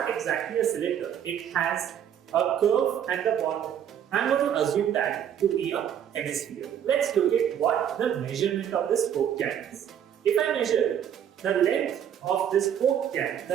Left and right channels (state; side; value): quieter; left; 9.3 dB